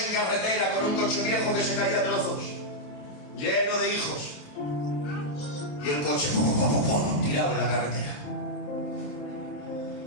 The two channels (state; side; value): late; right; 27 ms